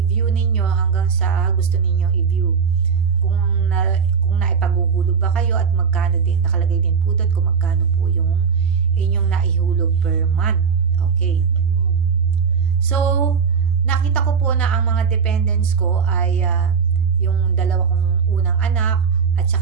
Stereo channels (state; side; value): quieter; left; 6.1 dB